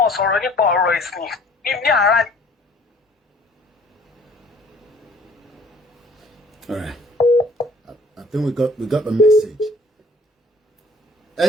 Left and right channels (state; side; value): normal; both; correlation 0.55